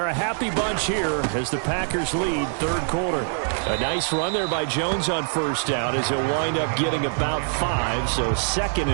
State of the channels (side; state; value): left; silent; digital silence